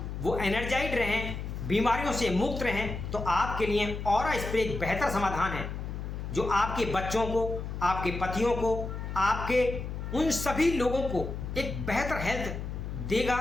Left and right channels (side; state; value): left; noise; hum, 6 dB below the sound